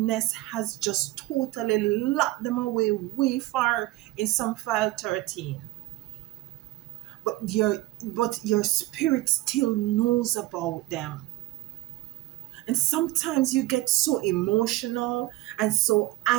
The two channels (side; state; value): left; quieter; 17.8 dB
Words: has just totally locked them away way far in some file 13. But your spirit still knows about them. And sometimes you get so emotional and so